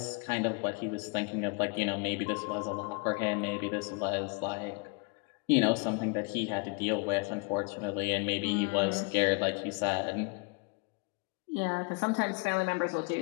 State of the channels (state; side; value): quieter; right; 31.2 dB